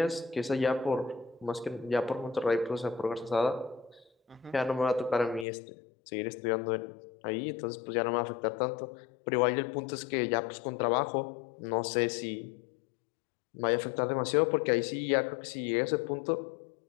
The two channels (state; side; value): drops out; right; at 5.5 s